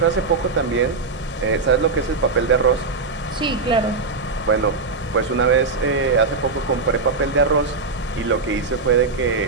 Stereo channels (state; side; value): quieter; left; 4.1 dB